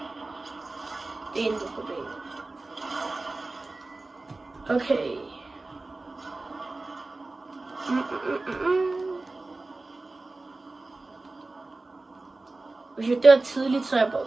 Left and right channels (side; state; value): left; quieter; 3.2 dB